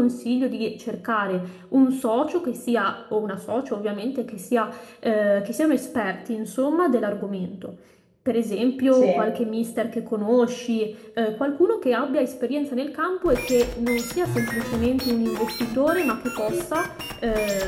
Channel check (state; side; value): identical; both; correlation 1.00